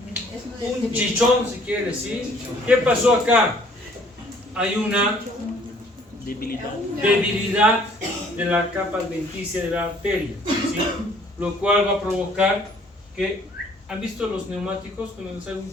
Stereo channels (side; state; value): both; normal; correlation 0.59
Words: Un chichón, si quieres, ¿sí? ¿Qué pasó acá? Hay una debilidad de la capa adventicia de la arteria, ¿sí? Lo cual va a provocar que, ¿han visto los neumáticos cuando sale un